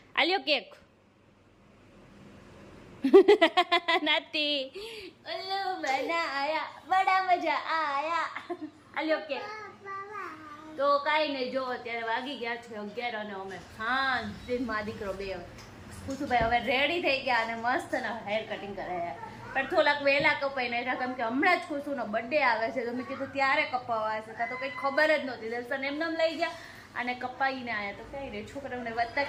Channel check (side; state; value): both; identical; correlation 1.00